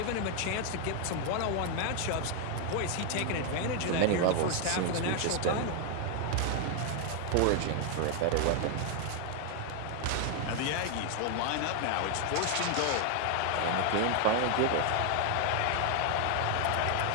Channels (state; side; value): different; both; correlation 0.00